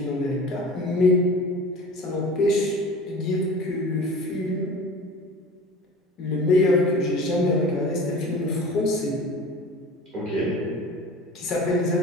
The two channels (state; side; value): normal; both; correlation 0.38